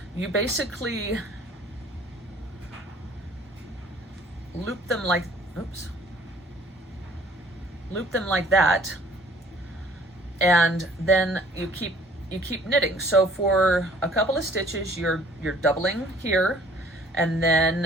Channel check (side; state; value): both; normal; correlation 0.55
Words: you basically loop them like, loop them like that, and then you keep knitting. So for a couple of stitches, you're doubling here, and